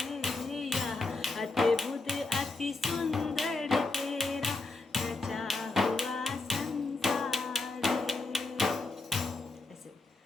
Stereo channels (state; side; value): quieter; right; 3.3 dB